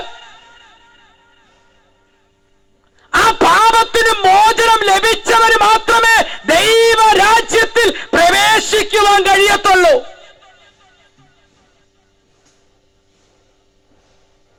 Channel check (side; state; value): both; identical; correlation 1.00